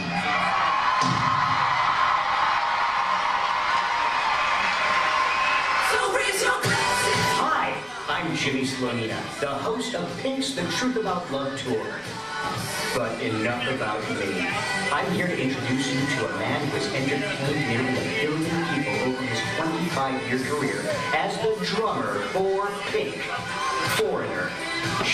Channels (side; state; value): both; identical; correlation 1.00